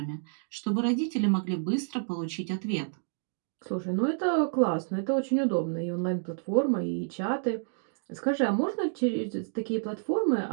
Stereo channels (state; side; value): silent; left; digital silence